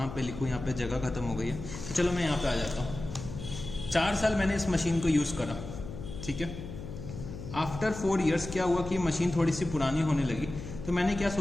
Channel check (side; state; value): left; noise; hum, 10 dB below the sound